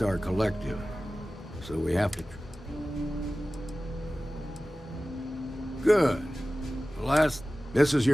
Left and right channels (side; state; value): both; normal; correlation 0.96